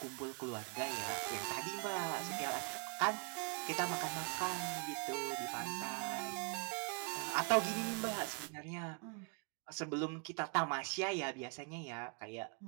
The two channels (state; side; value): quieter; left; 34.5 dB